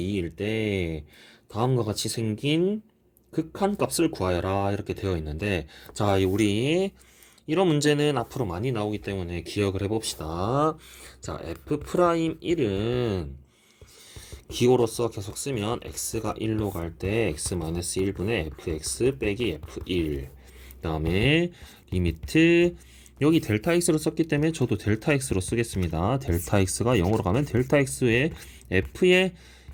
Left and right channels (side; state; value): both; identical; correlation 1.00